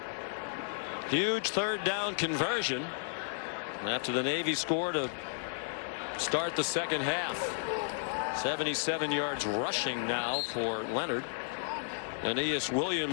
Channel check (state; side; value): silent; right; digital silence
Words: Huge third down conversion after the Navy score to start the second half. 77 yards rushing now for Leonard. Aeneas